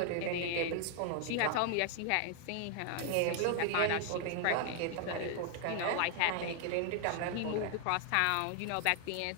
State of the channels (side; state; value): both; different; correlation 0.00